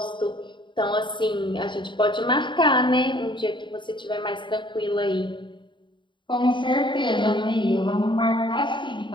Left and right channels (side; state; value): right; late; 0.23 ms